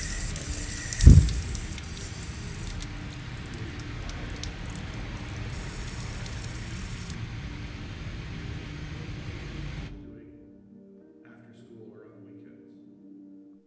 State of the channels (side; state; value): both; identical; correlation 1.00